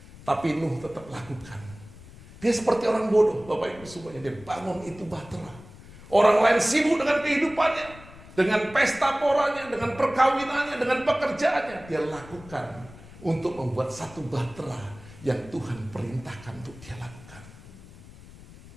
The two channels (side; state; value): left; noise; rumble, 19 dB below the sound